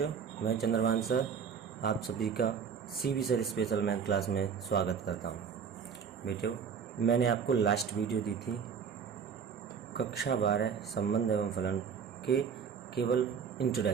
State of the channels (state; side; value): quieter; left; 6.7 dB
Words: मैं चंद्रभान सर आप सभी का CB sir special math class में स्वागत करता हूं। बेटियों, मैंने आपको लास्ट वीडियो दी थी कक्षा 12 संबंध एवं फलन के केवल